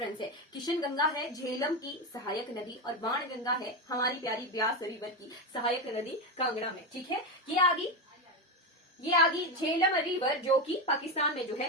है, किशन गंगा है झेलम की सहायक नदी और बाण गंगा है हमारी प्यारी ब्यास रिवर की सहायक नदी कांगड़ा में। ठीक है, ये आगी झेलम रिवर जो कि पाकिस्तान में जो है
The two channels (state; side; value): normal; both; correlation 0.13